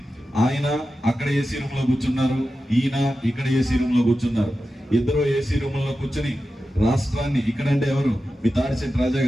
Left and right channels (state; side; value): normal; both; correlation 0.92